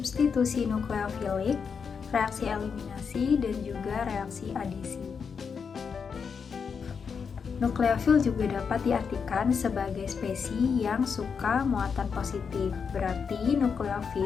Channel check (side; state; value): right; quieter; 6.1 dB